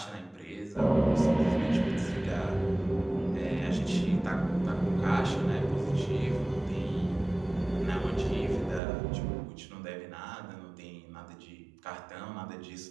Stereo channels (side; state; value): left; drops out; at 8.8 s